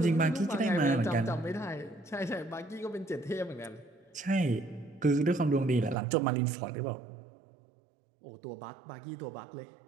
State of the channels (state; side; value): drops out; left; at 6.0 s